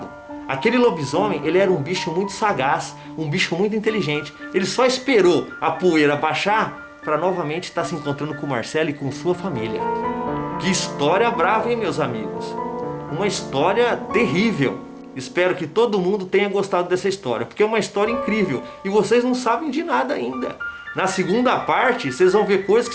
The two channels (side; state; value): both; identical; correlation 1.00